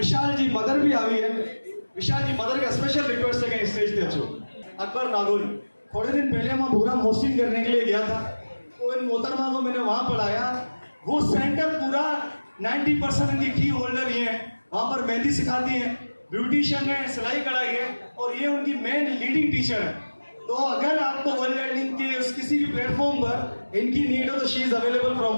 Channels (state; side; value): inverted; both; correlation -1.00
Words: जी मदर भी आई है। विशाल जी मदर का स्पेशल रिक्वेस्ट है कि स्टेज पे अच्छो। अकबर नागौरी, थोड़े दिन पहले मैं प्रोग्राम होस्टिंग करने के लिए गया था तो इन मोहतरमा को मैंने वहां पढ़ाया। वो सेंटर पूरा 90% इनकी की होल्डर ही है। वहां पर मेहंदी सिखाती है, ब्यूटिशियन है, सिलाई कढ़ाई है और ये उनकी मेन लीडिंग टीचर है। तो अगर आपको वर्ल्ड लर्निंग के किसी भी प्लेटफॉर्म पर इनकी नीड हो तो she is available from